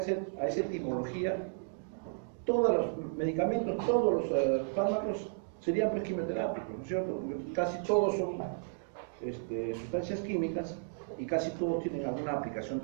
etimología, todos los medicamentos, todos los fármacos serían pues quimioterápicos, ¿no es cierto? Porque casi todos son sustancias químicas y casi todos tienen alguna aplicación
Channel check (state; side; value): silent; left; digital silence